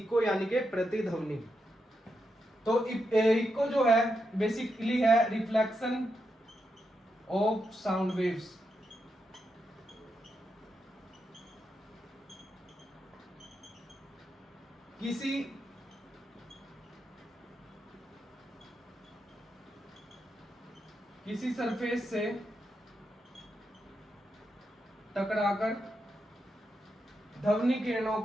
यानी कि प्रतिध्वनि। तो इको जो है बेसिकली है रिफ्लेक्शन ऑफ साउंड वेव्स। किसी सरफेस से टकराकर ध्वनि तरंगों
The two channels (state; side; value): normal; both; correlation 0.84